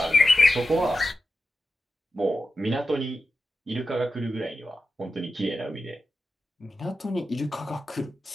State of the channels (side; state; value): both; normal; correlation 0.91